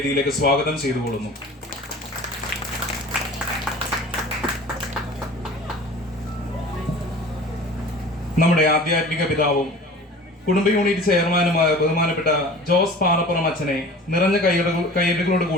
സ്വാഗതം ചെയ്തുകൊള്ളുന്നു. നമ്മുടെ ആധ്യാത്മിക പിതാവും കുടുംബ യൂണിറ്റ് ചെയർമാനുമായ ബഹുമാനപ്പെട്ട ജോസ് പാറപ്പുറം അച്ഛനെ നിറഞ്ഞ കയ്യടികളോട്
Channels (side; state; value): both; normal; correlation 0.42